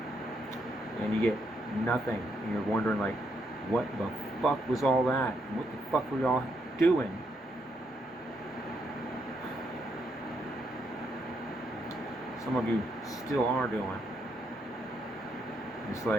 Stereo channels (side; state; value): both; normal; correlation 0.77